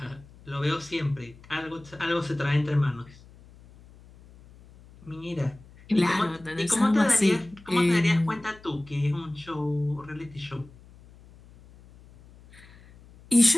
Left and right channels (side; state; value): left; noise; hum, 23 dB below the sound